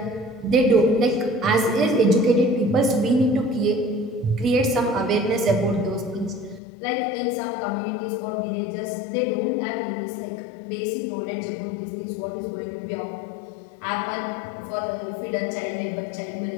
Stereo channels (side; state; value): right; drops out; at 6.6 s